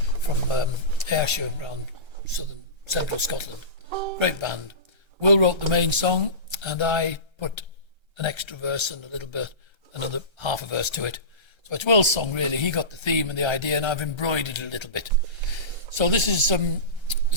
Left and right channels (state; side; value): late; right; 1.3 ms